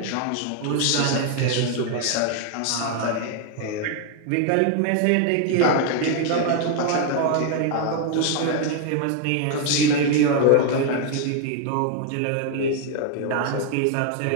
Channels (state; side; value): different; both; correlation 0.01